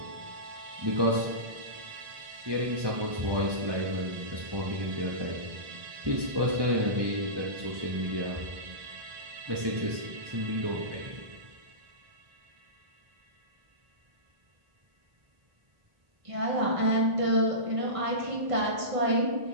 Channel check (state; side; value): late; left; 1.2 ms